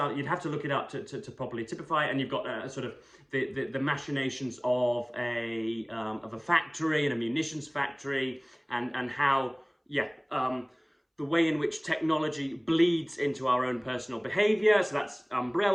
you'd have to look it up to properly typify it, and you've got sort of the machinations of a factory and a munitions factory, and how, yeah, the way in which technology bleeds into our own personal behaviour. So that's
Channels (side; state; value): both; identical; correlation 1.00